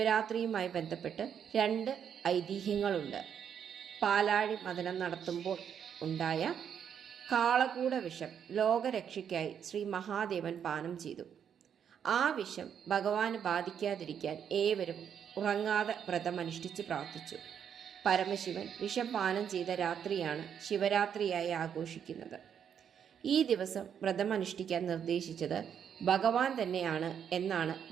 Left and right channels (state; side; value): quieter; left; 8.2 dB